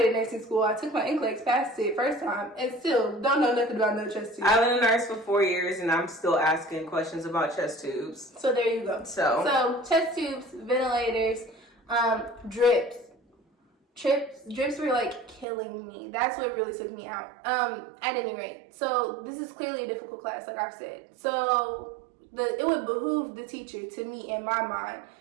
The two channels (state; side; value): drops out; left; at 15.5 s